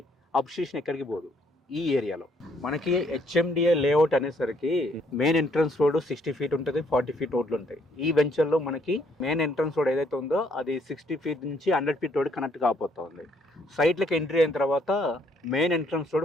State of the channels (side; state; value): both; normal; correlation 0.68